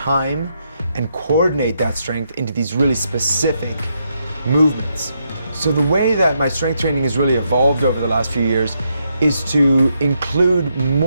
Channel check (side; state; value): both; inverted; correlation -0.79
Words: and coordinate that strength into these really specific movements. So the way that my strength training has really evolved over the last few years is to include